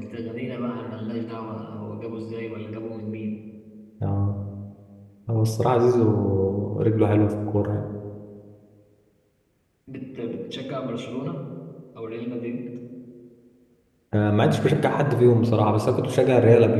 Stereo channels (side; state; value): both; identical; correlation 1.00